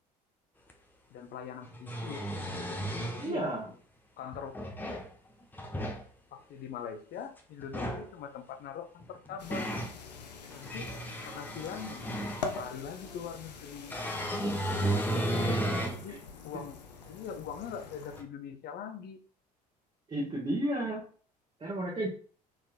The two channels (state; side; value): normal; both; correlation 0.59